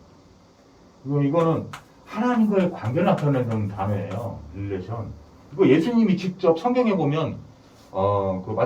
이거는 하나님과의 관계를 나타내는 단어예요. 릴레이션. 이거 예수님이 직접 성경에 보면 그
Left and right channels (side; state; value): both; identical; correlation 1.00